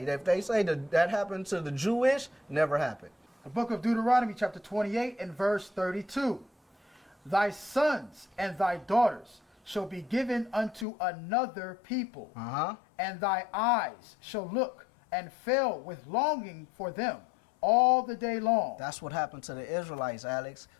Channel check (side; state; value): right; drops out; at 10.9 s